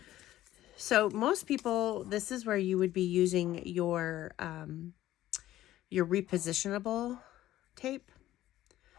So most people, this is where you would be using your repositionable tape.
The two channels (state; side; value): quieter; right; 14.2 dB